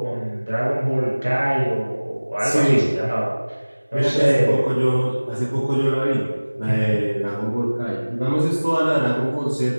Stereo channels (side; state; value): both; inverted; correlation -1.00